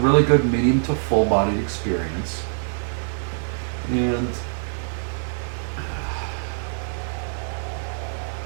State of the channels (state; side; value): silent; left; 62 dB below the other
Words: good medium to full-bodied experience. And